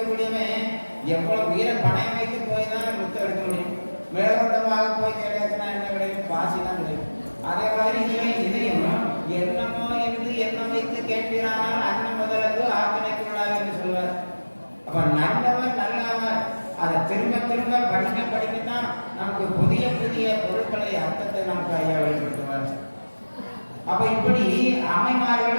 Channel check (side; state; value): both; inverted; correlation -1.00